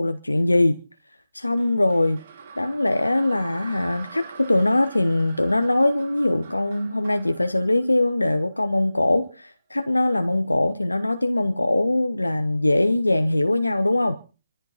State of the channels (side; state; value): both; inverted; correlation -0.97